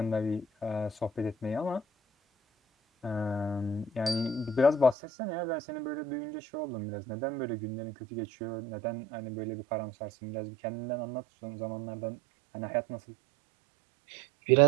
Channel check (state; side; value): drops out; left; at 5.0 s